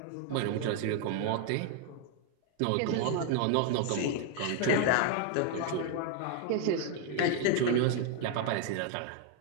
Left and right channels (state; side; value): different; both; correlation 0.01